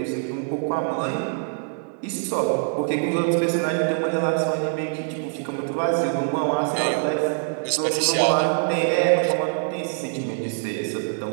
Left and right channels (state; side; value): silent; left; 63 dB below the other